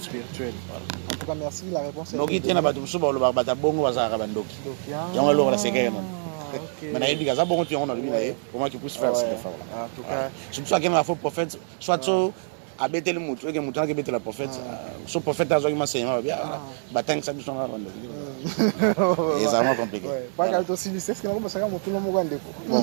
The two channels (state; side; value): silent; left; digital silence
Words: En tout cas, merci la réponse. Nous qui tenons à tout ça, on va battre bongo à Zarabandoki. Et on va le séquer. Mais il y a des gens qui ont comment tu puisses faire cette effort-là. En tout cas, c'est pour ça qu'il y a un faux prophète, soit a bêté le mouton, que mouton a bêté le prophète. Ce prophète a joué ma bien. Batang ça nous a rendu. Et c'est vraiment compliqué. Pas qu'à aussi c'est ce que nous pensons que tout le monde va bon, on